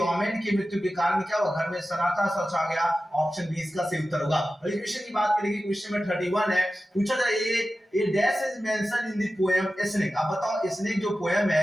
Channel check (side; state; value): both; normal; correlation 0.94